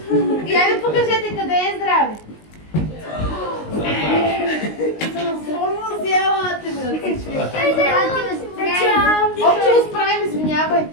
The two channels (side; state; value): right; late; 19 ms